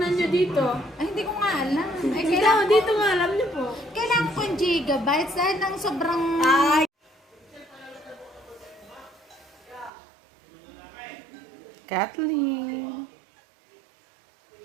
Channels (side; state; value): left; drops out; at 9.9 s